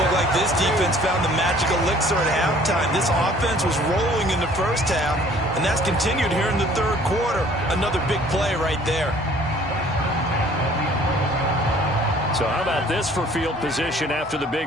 like this defense found the magical elixir at halftime. This offense was rolling in the first half, and that's continued here in the third quarter. Another big play right there. So how about this for field position after the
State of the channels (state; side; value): normal; both; correlation 0.55